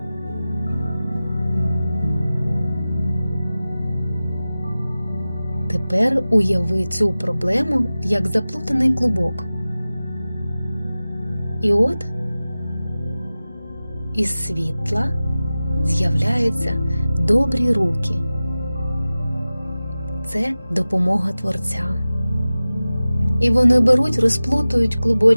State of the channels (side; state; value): both; inverted; correlation -0.97